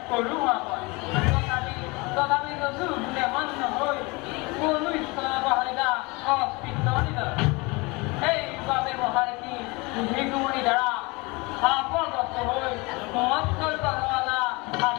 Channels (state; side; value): quieter; right; 25.8 dB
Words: কৰোঁ তথাপি যোনে মান্য হৈ কোনো ঈশ্বৰবাহিতা অস্তিত্ব নিদৰ সেইবাবে মহাৰিষি ভিগুমণি দ্বাৰা শাপগ্ৰস্ত হৈ মৎস্য